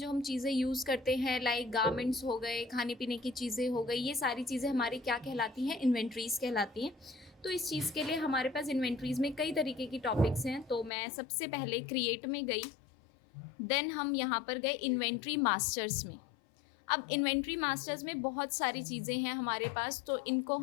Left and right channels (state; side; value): drops out; right; at 10.9 s